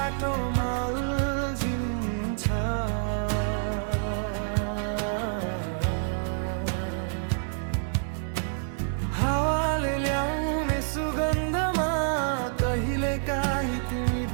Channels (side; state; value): left; silent; digital silence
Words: अल्झिन्छ। हावाले ल्याउने सुगन्धमा कहिलेकाहीँ तिमी